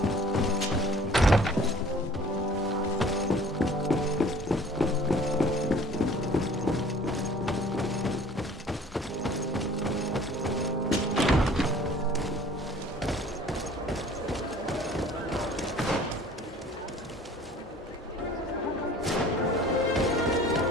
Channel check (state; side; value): normal; both; correlation 0.50